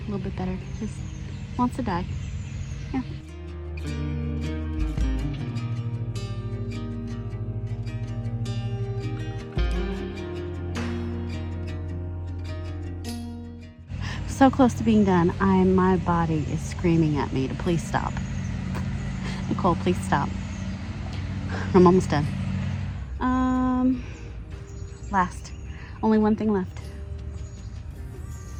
little bit better. Just wants to die. Yeah. So close to being done. My body is screaming at me to please stop. Nicole, please stop. I'm almost done. Last. Only one thing left.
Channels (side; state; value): both; identical; correlation 1.00